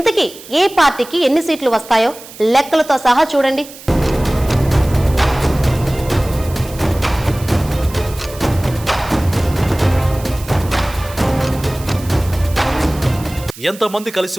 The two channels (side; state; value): right; noise; hiss, 17 dB below the sound